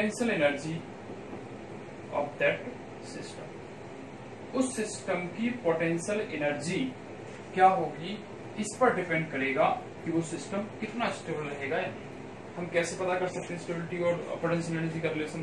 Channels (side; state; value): both; identical; correlation 1.00